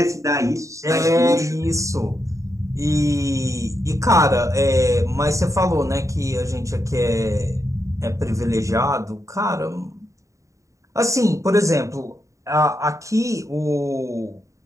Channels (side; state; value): left; late; 0.15 ms